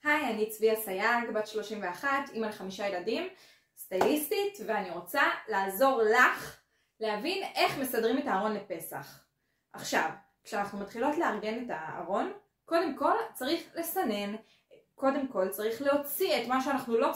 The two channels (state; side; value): identical; both; correlation 1.00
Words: היי, אני צביה סייג, בת 31, אמא ל5 ילדים, סטייליסטית, ואני רוצה לעזור לך להבין איך מסדרים את הארון לפסח. עכשיו, כשאנחנו מתחילות לארגן את הארון, קודם כל צריך לסנן, קודם כל צריך להוציא את מה שאנחנו לא